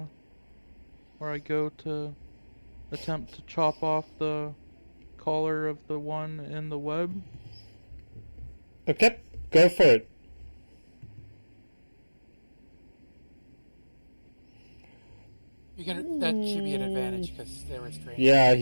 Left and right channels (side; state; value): both; inverted; correlation -1.00